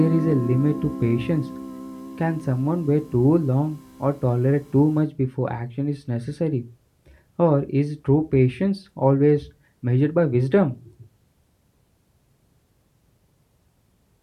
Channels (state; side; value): identical; both; correlation 1.00